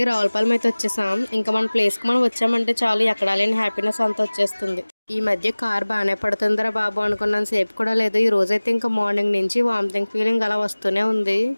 రావులపాలెం అయితే వచ్చేసాం. ఇంకా మన ప్లేస్కి మనం వచ్చామంటే చాలు, ఎక్కడా లేని హ్యాపీనెస్ అంతా వచ్చేస్తుంది. ఈ మధ్య కార్ బాగానే పడుతుందిరా బాబు అనుకున్నాను సేపు కూడా లేదు. ఈ రోజైతే ఇంకా మార్నింగ్ నుంచి వామిటింగ్ ఫీలింగ్ అలా వస్తూనే ఉంది.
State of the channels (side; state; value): both; inverted; correlation -1.00